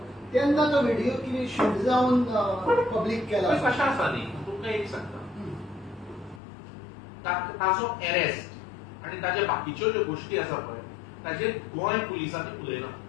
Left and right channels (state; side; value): drops out; right; at 6.4 s